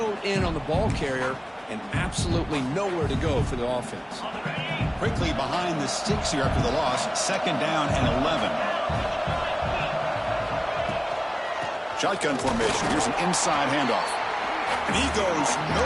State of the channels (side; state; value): both; identical; correlation 1.00